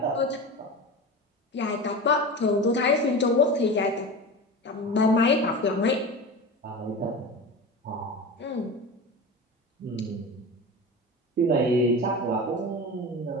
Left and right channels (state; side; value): normal; both; correlation 0.29